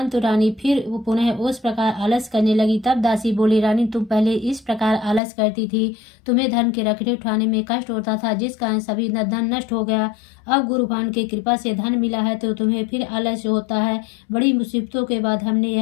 रानी फिर पुनः उस प्रकार आलस करने लगी। तब दासी बोली, रानी तुम पहले इस प्रकार आलस करती थी, तुम्हें धन के रखने उठाने में कष्ट होता था, जिस कारण सभी धन नष्ट हो गया। अब गुरु भगवान की कृपा से धन मिला है तो तुम्हें फिर आलस्य होता है। बड़ी मुसीबतों के बाद हमने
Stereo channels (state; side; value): drops out; right; at 5.2 s